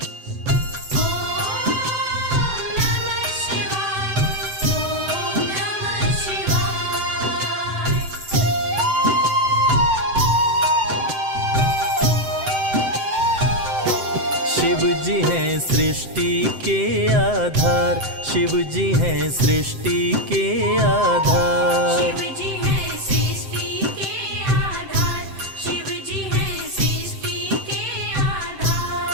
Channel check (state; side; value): late; left; 7.8 ms